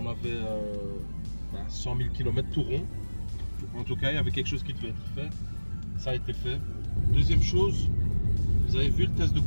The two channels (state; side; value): inverted; both; correlation -1.00